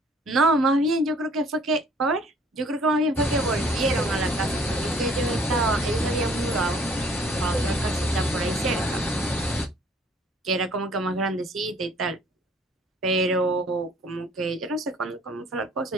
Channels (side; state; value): both; normal; correlation 0.57